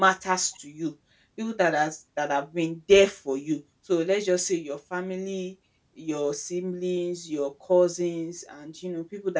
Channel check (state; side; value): identical; both; correlation 1.00